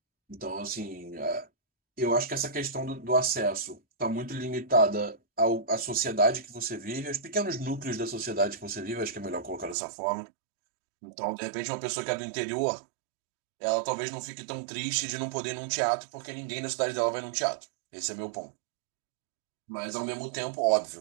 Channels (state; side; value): drops out; left; at 9.8 s